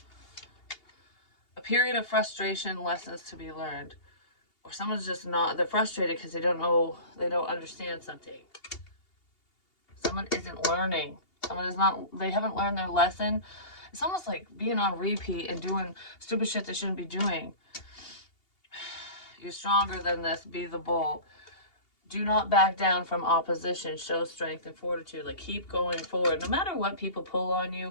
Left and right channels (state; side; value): late; right; 2.8 ms